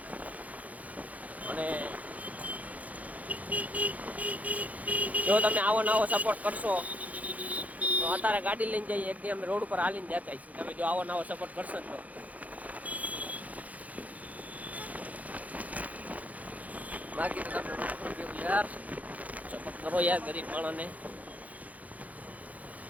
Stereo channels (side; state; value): left; late; 0.074 ms